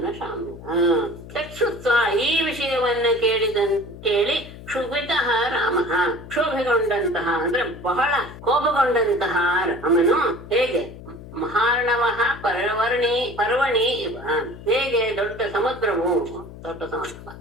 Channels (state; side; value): noise; left; hum, 15 dB below the sound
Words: ತತ್ಸುತ್ವಾ ಈ ವಿಷಯವನ್ನ ಕೇಳಿ ಕ್ಷುಭಿತಃ ರಾಮಃ ಕ್ಷೋಭೆಗೊಂಡಂತಹ ಅಂದ್ರೆ ಬಹಳ ಕೋಪಗೊಂಡಂತಹ ರಾಮನು ಹೇಗೆ ಮಹಾರ್ಣವಃ ಪರ್ವಣಿ ಇವ ಹೇಗೆ ದೊಡ್ಡ ಸಮುದ್ರ